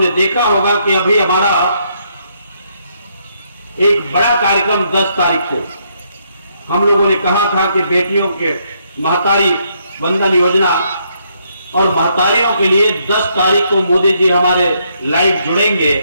देखा होगा कि अभी हमारा एक बड़ा कार्यक्रम 10 तारीख को हम लोगों ने कहा था कि बेटियों के महतारी वंदन योजना और महतारियों के लिए 10 तारीख को मोदी जी हमारे लाइव जुड़ेंगे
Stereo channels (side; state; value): both; inverted; correlation -0.74